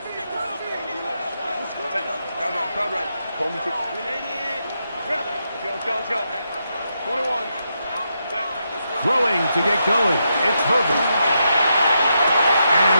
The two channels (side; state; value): both; inverted; correlation -0.82